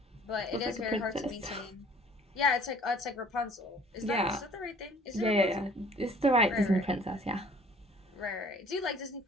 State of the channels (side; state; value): both; normal; correlation 0.54